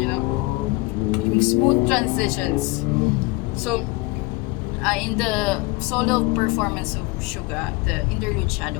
know, yung smooth transitions. So in the solo performance of Suga, the Interlude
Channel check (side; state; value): right; quieter; 23.2 dB